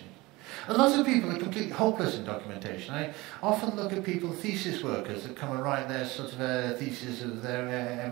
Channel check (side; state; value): left; quieter; 21.7 dB